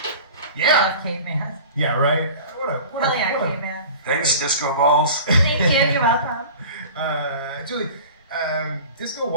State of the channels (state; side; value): inverted; both; correlation -0.39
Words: Yeah. Caveman. Yeah, right. Hell yeah, caveman. Thanks, Disco Balls. Thank you. You're welcome. Julie, Disco